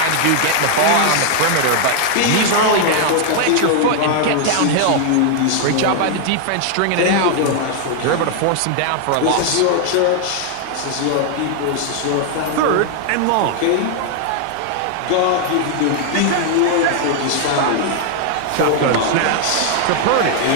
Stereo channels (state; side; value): different; both; correlation 0.00